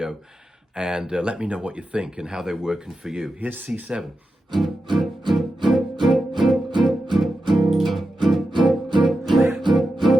and let me know what you think and how they're working for you. Here's C7.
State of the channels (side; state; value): both; normal; correlation 0.90